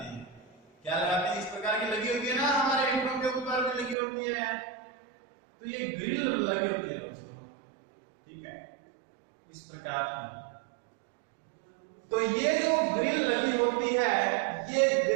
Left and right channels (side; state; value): left; drops out; at 4.0 s